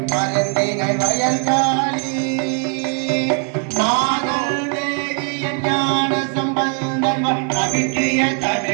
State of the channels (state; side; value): quieter; left; 39.9 dB